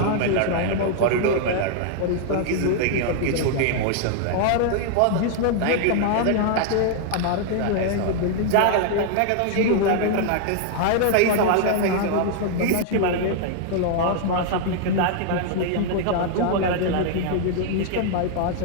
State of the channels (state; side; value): different; both; correlation -0.01